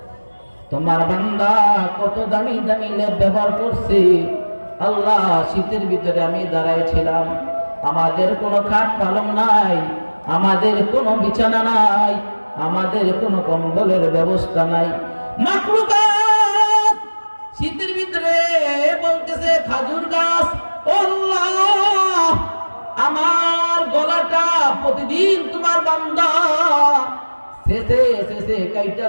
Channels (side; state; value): both; inverted; correlation -1.00